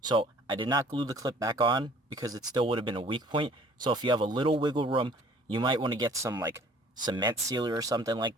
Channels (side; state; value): both; normal; correlation 0.54